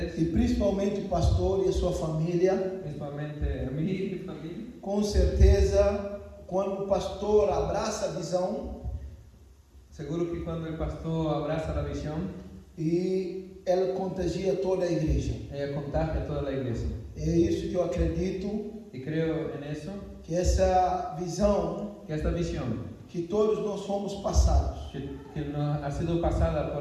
e principalmente o pastor e a sua família. principalmente a mí y mi familia. Com certeza, quando o pastor abraça a visão Seguro que cuando el pastor abraza la visión, e ela contagia toda a igreja. ella contagia a toda la iglesia. É isso que eu acredito, Y creo en eso, que essa visão que esta visión que todos nós fomos passados. que nos ha sido pasada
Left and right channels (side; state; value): both; identical; correlation 1.00